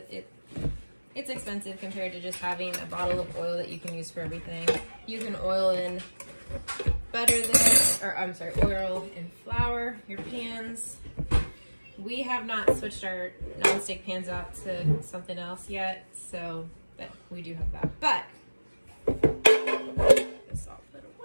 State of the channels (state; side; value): inverted; both; correlation -1.00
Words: It's expensive compared to just having a bottle of oil that you can use for everything. You can oil in butter this, or I'm sorry, oil and flour your pans. We have not switched our nonstick pans out to something else yet, so but we do have that. But this all put